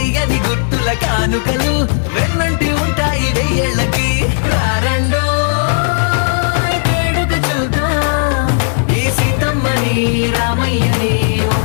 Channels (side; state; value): right; silent; digital silence